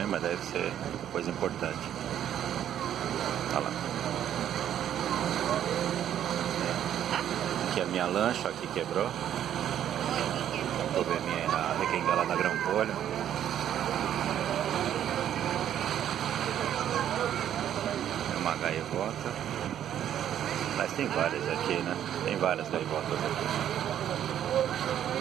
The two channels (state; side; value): quieter; left; 10.5 dB